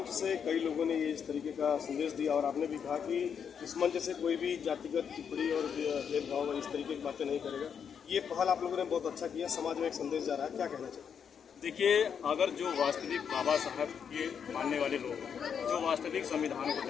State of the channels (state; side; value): quieter; right; 7.3 dB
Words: से कई लोगों ने इस तरीके का संदेश दिया और आपने भी कहा कि इस मंच से कोई भी जातिगत टिप्पणी और भेदभाव इस तरीके की बातें नहीं करेगा। ये पहल आप लोगों ने बहुत अच्छा किया, समाज में एक संदेश जा रहा है, क्या कहना चाहिए? देखिए, अगर जो वास्तविक बाबा साहब के मानने वाले लोग जो वास्तविक संविधान को